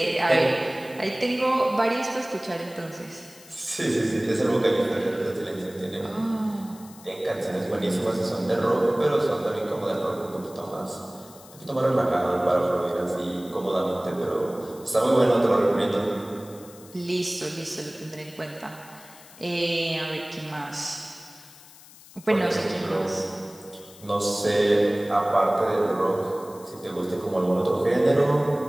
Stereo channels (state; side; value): noise; left; hiss, 21 dB below the sound